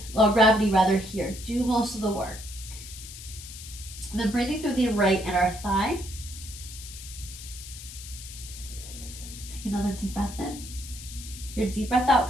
or gravity rather, here do most of the work. And then breathing through the right inner thigh. Take another deep breath in. Your deep breath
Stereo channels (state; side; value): noise; left; hiss, 13 dB below the sound